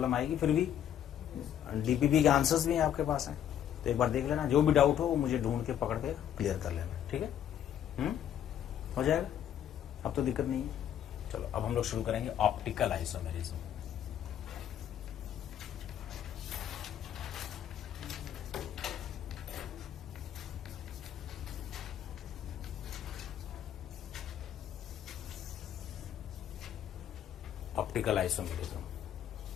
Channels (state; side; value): quieter; right; 10.1 dB